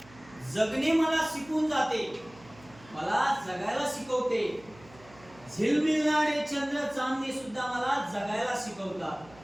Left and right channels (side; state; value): right; noise; hum, 23 dB below the sound